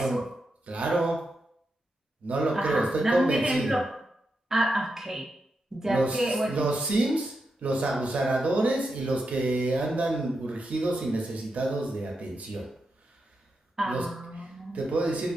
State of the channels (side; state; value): both; normal; correlation 0.86